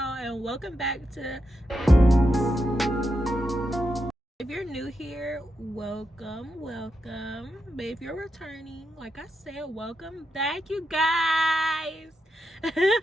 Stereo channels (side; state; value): both; normal; correlation 0.86